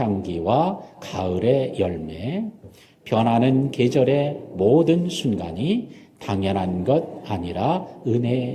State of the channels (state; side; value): identical; both; correlation 1.00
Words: 가을의 열매, 변하는 계절의 모든 순간이 당연한 것 아니라